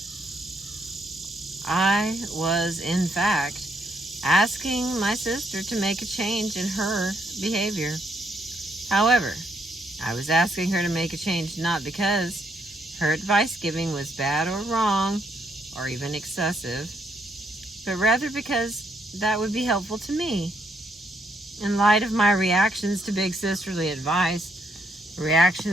I was, in fact, asking my sister to make a change in her behavior. However, I was asking her to make a change not because her advice giving was bad or wrong or even excessive, but rather because that would be helpful to me. In light of my reactions to big sisterly advice,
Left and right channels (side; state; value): both; normal; correlation 0.74